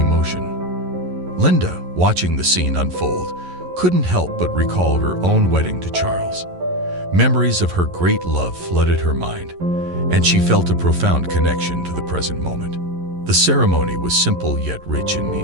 Linda, watching the scene unfold, couldn't help but recall her own wedding to Charles. Memories of her great love flooded her mind, and she felt a profound connection to the present moment. The ceremony was simple yet rich in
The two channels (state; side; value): late; left; 11 ms